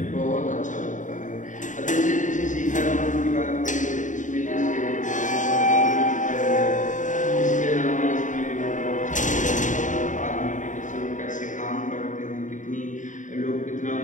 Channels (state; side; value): late; right; 0.36 ms